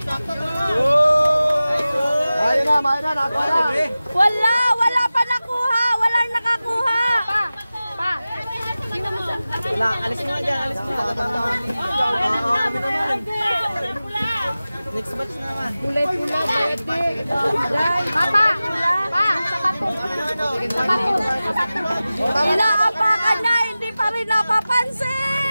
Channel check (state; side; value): inverted; both; correlation -0.96